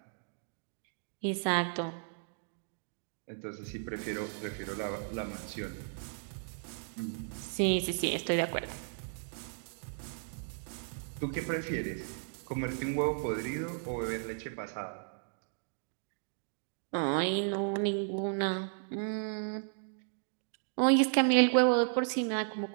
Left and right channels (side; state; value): left; silent; digital silence